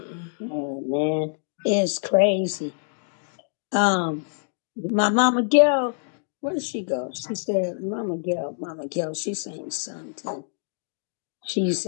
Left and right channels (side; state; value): right; silent; digital silence